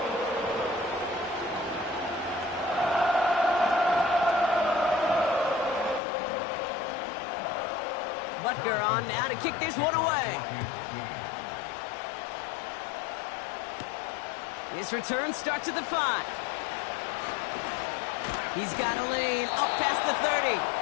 Butker on now to kick this one away. This return starts at the 5. He's got a lane up past the 30.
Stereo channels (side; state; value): right; drops out; at 6.0 s